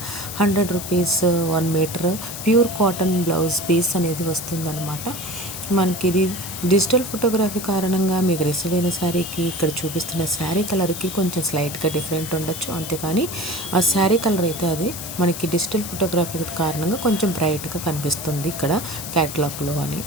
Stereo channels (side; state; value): left; noise; hiss, 8 dB below the sound